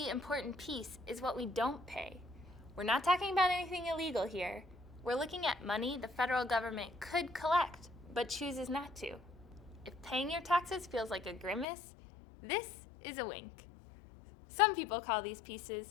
important piece is what we don't pay. We're not talking about anything illegal here. We're looking at money the federal government could collect, but chooses not to. If paying your taxes feels like a grimace, this is a wink. Some people call these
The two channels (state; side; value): drops out; right; at 11.7 s